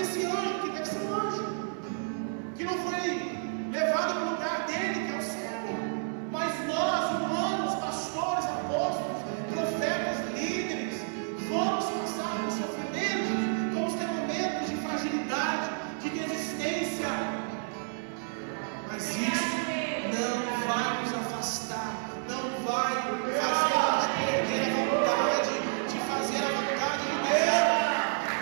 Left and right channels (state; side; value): silent; left; digital silence